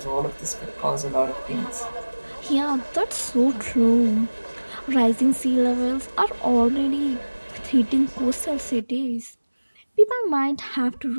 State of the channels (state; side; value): inverted; both; correlation -1.00